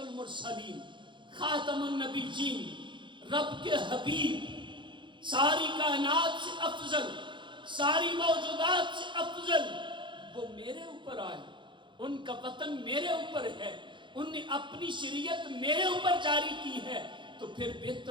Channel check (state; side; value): late; left; 0.23 ms